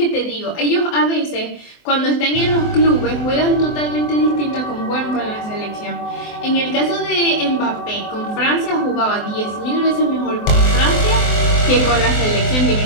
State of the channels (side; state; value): right; late; 24 ms